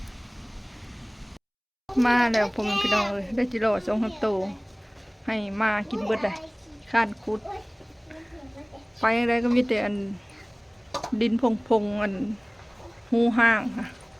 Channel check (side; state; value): both; identical; correlation 1.00